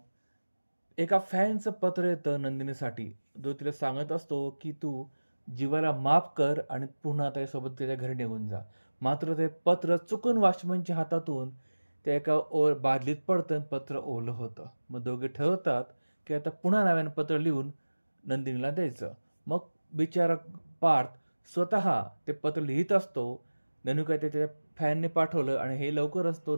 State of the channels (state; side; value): inverted; both; correlation -1.00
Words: एका फॅनचं पत्र येतं नंदिनीसाठी, जो तिला सांगत असतो की तू जीवाला माफ कर आणि पुन्हा त्याच्यासोबत त्याच्या घरी निघून जा. मात्र ते पत्र चुकून वॉचमनच्या हातातून त्या एका बादलीत पडतं, पत्र ओलं होतं. मग दोघे ठरवतात की आता पुन्हा नव्यानं पत्र लिहून नंदिनीला द्यायचं. मग बिचारा पार्थ स्वतः ते पत्र लिहित असतो. ननू काय ते त्याच्या फॅनने पाठवलं आणि हे लवकरच तो